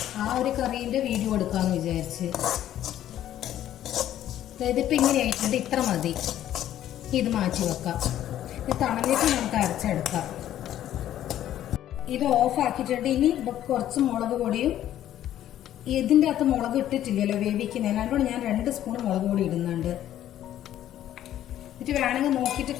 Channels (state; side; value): quieter; right; 12.0 dB